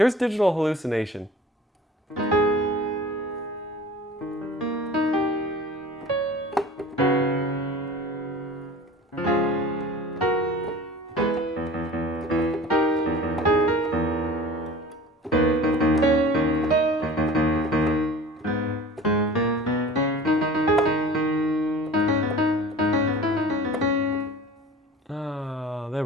Digital Hallucination. There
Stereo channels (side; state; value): both; normal; correlation 0.41